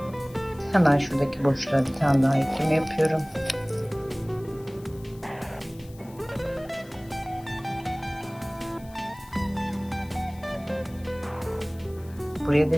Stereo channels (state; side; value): noise; left; hiss, 24 dB below the sound